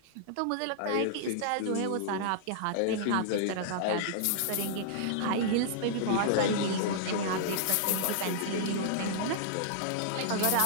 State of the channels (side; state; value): both; different; correlation -0.01